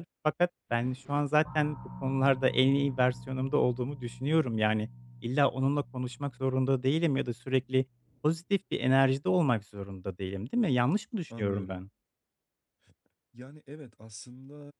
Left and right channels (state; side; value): identical; both; correlation 1.00